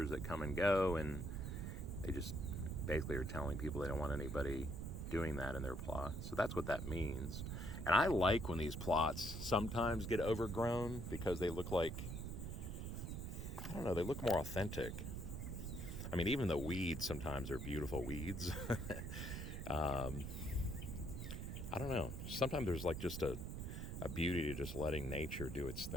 that come and go, and they just basically are telling people they don't want anybody doing that in their plot. So that's what that means. And I like when these plots sometimes get overgrown because they look like, they look more authentic. I mean, even the weeds sometimes are beautiful weeds. I don't know. Sometimes there's like just a beauty to just letting nature do its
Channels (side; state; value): right; noise; rumble, 5 dB below the sound